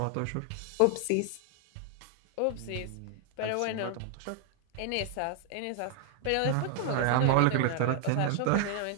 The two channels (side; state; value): both; different; correlation 0.00